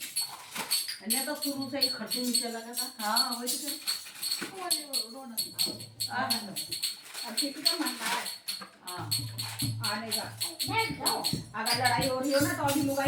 अन्य तो शुरू से ही खर्चे नीचे लगा था। हाँ वही तो। अब किसी का मानता है आने का अगर लड़ाई हो रही हो ना तो अभी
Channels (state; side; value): identical; both; correlation 1.00